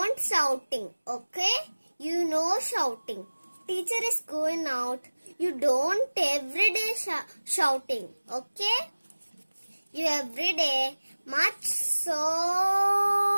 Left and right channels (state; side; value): inverted; both; correlation -1.00